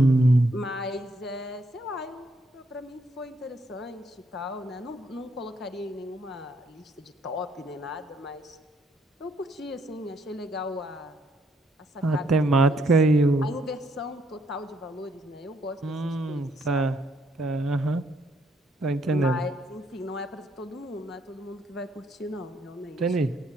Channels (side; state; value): both; normal; correlation 0.71